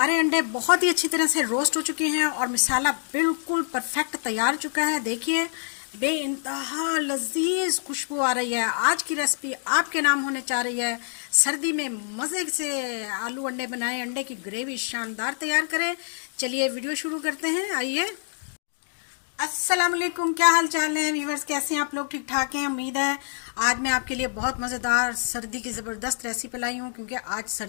अंडे बहुत ही अच्छी तरह से रोस्ट हो चुके हैं और मसाला बिल्कुल परफेक्ट तैयार हो चुका है। देखिए बेइंतहा लजीज खुशबू आ रही है। आज की रेसिपी आपके नाम होने जा रही है। सर्दी में मज़े से आलू अंडे बनाएं, अंडे की ग्रेवी शानदार तैयार करें। चलिए वीडियो शुरू करते हैं, आइए। अस्सलाम वालेकुम, क्या हाल चाल है व्यूवर्स, कैसे हैं आप लोग? ठीक ठाक हैं, उम्मीद है। आज मैं आपके लिए बहुत मज़ेदार सर्दी की ज़बरदस्त रेसिपी लाई हूँ, क्योंकि आज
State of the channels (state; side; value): silent; right; digital silence